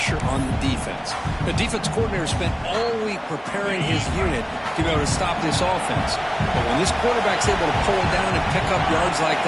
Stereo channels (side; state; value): both; identical; correlation 1.00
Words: on the defense. The defense coordinator spent all week preparing his unit to be able to stop this offense. But when this quarterback's able to pull it down and pick up yards like